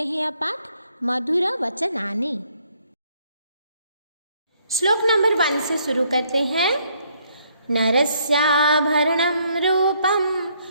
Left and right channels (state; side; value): inverted; both; correlation -0.69